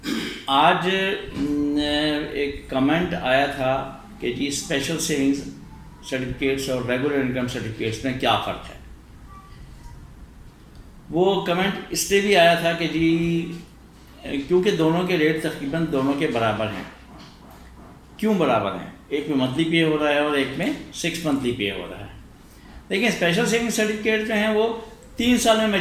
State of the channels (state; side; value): identical; both; correlation 1.00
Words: آج ایک کمنٹ آیا تھا کہ جی اسپیشل سیونگز سرٹیفکیٹس اور ریگولر انکم سرٹیفکیٹس میں کیا فرق ہے. وہ کمنٹ اس لیے بھی آیا تھا کہ جی کیونکہ دونوں کے ریٹ تقریباً دونوں کے برابر ہیں. کیوں برابر ہیں؟ ایک میں منتھلی پے ہو رہا ہے اور ایک میں 6 منتھلی پے ہو رہا ہے. لیکن اسپیشل سیونگ سرٹیفکیٹ جو ہیں وہ 3 سال میں